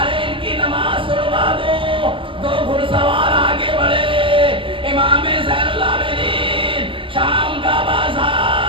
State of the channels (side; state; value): left; late; 0.25 ms